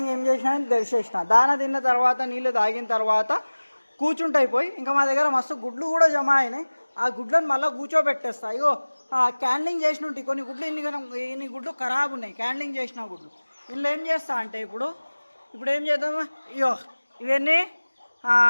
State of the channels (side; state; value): both; inverted; correlation -1.00